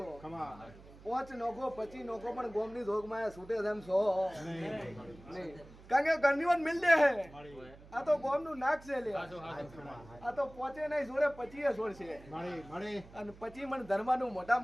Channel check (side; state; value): right; noise; hum, 20 dB below the sound